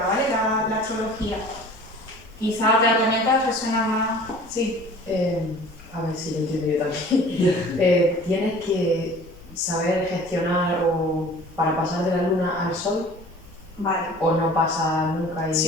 ¿vale? La astrología. Quizá otras herramientas resuenan más... Sí. A ver si lo entiendo yo también. Tienes que saber gestionar o para pasar de la luna al sol, Vale. o no pasa nunca y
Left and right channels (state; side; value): normal; both; correlation 0.46